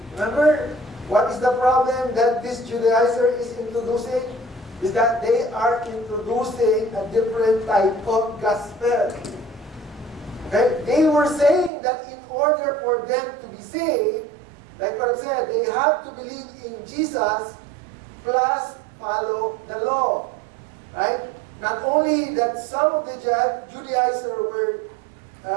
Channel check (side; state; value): left; drops out; at 11.7 s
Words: Remember, what is the problem that this Judaizer is introducing? Is that they are introducing a different type of gospel. Okay? They were saying that in order for them to be saved, like what I said, they have to believe in Jesus plus follow the law. Right? Not only that some of the Judaizers were,